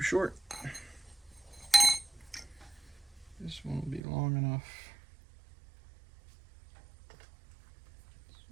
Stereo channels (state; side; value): drops out; left; at 4.0 s